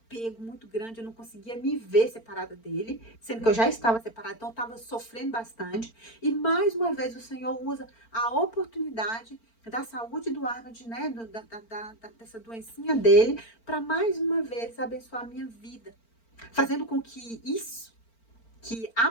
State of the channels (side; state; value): right; late; 4.4 ms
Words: muito grande, eu não conseguia me ver separada dele, sendo que eu já estava separada, então eu estava sofrendo bastante. E mais uma vez o Senhor usa a oportunidade da saúde do Arnold, né, dessa doencinha dele, para mais uma vez abençoar a minha vida, fazendo com que isso, que